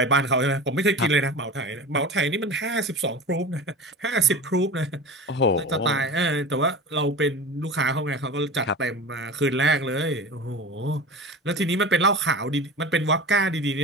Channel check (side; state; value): both; normal; correlation 0.31